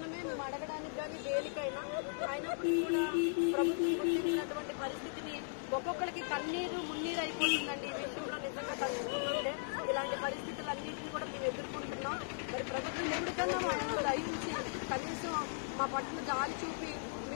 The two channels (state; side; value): silent; right; digital silence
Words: మేము అడగడానికి కానీ దేనికైనా అయినప్పుడు కూడా ప్రభుత్వం గుర్తించినటువంటి పరిస్థితిని ఒక్కొక్కరికి కన్నీరు మున్నీరు అయిపోతుందండి. ఈ విషయంలో నిజంగా తలుచుకుంటుంటే ఇలాంటి పరిస్థితులన్నింటినీ కూడా మేము ఎదుర్కొంటున్నాం. మరి ప్రభుత్వం ఎప్పటికన్నా మా దయించి కనీసం మా పట్ల జాలి చూపి